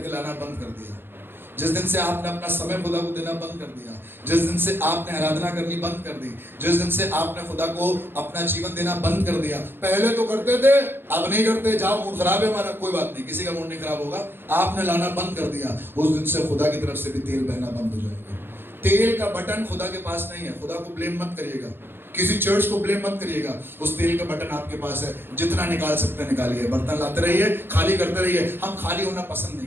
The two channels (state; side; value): late; left; 0.10 ms